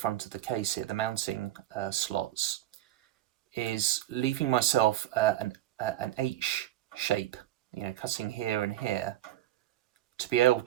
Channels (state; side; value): quieter; left; 13.7 dB